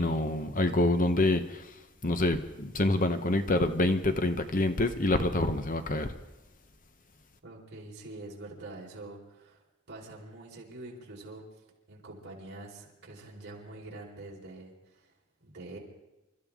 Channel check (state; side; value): normal; both; correlation 0.57